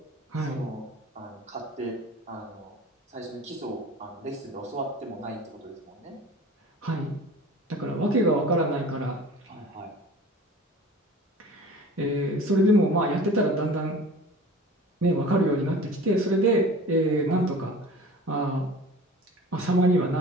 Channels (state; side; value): normal; both; correlation 0.41